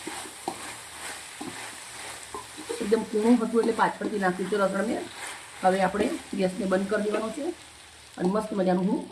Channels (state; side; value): identical; both; correlation 1.00